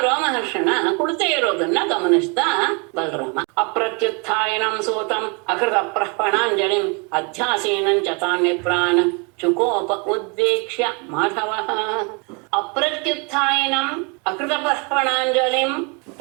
ರೋಮಹರ್ಷಣ ಕುಳಿತೇ ಇರೋದನ್ನ ಗಮನಿಸ್ತಾ ಬಲರಾಮ ಅಪ್ರತ್ಯುತ್ಥಾಯನಂ ಸೂತಂ ಅಕೃತ ಪ್ರಹ್ಪಣಾಂಜಲಿಂ ಅಧ್ಯಾಸೀನಂ ಚ ತಾನ್ ವಿಪ್ರಾನ್ ಚುಕೋಪ ಉದ್ವೀಕ್ಷ್ಯ ಮಾಧವಃ. ಅಪ್ರತ್ಯುತ್ಥಾಯನಂ ಅಕೃತ ಪ್ರಹ್ಪಣಾಂಜಲಿಂ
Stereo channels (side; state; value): left; quieter; 33.2 dB